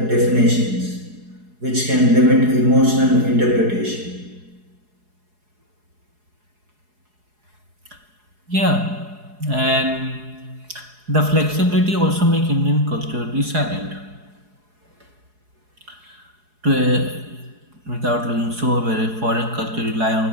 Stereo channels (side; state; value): left; late; 4.8 ms